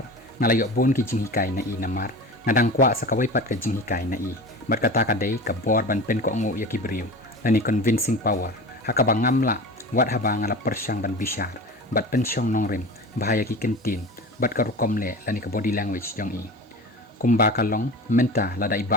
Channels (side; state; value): both; normal; correlation 0.33